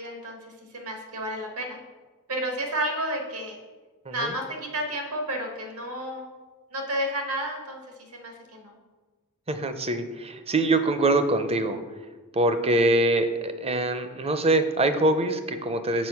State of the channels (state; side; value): normal; both; correlation 0.28